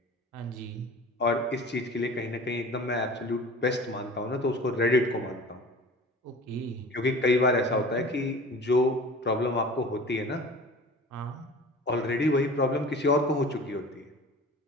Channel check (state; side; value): normal; both; correlation 0.41